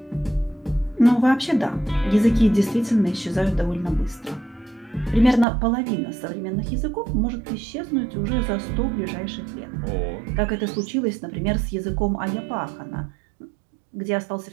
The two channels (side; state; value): left; drops out; at 5.5 s